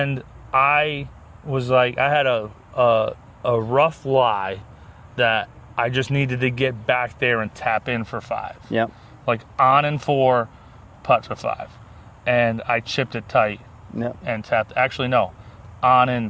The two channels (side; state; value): both; identical; correlation 1.00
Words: I was like, I had a rough lie that I just needed to get back there and tap in for 5. Yeah. Like on and 4, putt for 5. And I chipped it tight and tapped. Actually, no. On and